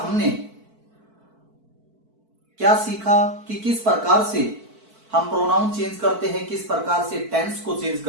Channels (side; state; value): left; late; 4.5 ms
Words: क्या सीखा कि किस प्रकार से हम प्रोनाउन चेंज करते हैं, किस प्रकार से टेंस को चेंज